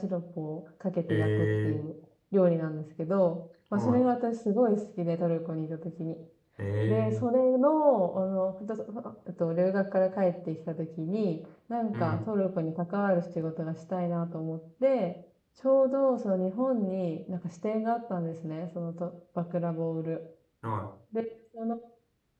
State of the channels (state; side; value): identical; both; correlation 1.00